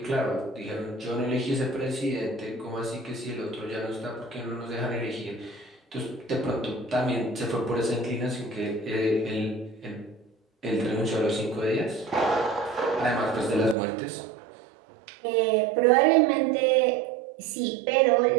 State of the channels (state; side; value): drops out; left; at 13.8 s